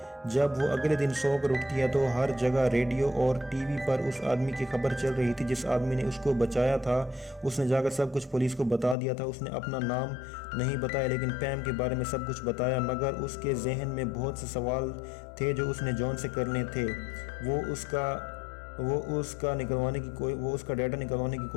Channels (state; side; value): drops out; right; at 9.0 s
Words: جب وہ اگلے دن سو کر اٹھتی ہے تو ہر جگہ ریڈیو اور ٹی وی پر اس آدمی کی خبر چل رہی تھی جس آدمی نے اس کو بچایا تھا۔ اس نے جا کر سب کچھ پولیس کو بتا دیا تھا۔ اس نے اپنا نام نہیں بتایا لیکن پیم کے بارے میں سب کچھ بتایا، مگر اس کے ذہن میں بہت سے سوال تھے جو اس نے جان سے کرنے تھے۔ وہ اس کا ڈیٹا نکلوانے کی